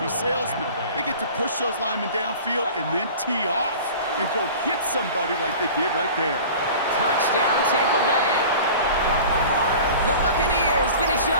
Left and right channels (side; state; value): both; inverted; correlation -0.40